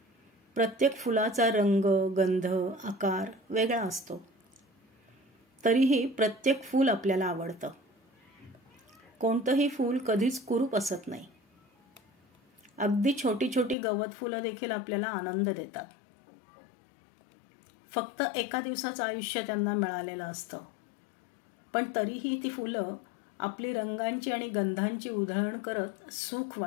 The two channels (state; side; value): drops out; right; at 13.8 s